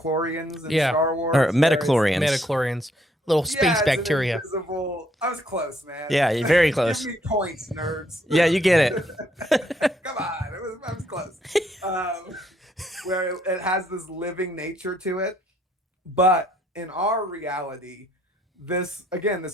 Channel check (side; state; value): both; normal; correlation 0.70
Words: in Star Wars? Or metachlorians. Metachlorians. Little space bacteria. I was close, man. Yeah, you're very close. Give me points, nerds. Yeah, you get it. Come on, I was close. Where it has this living nature to it. But in our reality, this